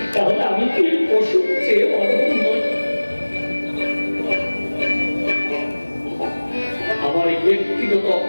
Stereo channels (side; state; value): both; inverted; correlation -1.00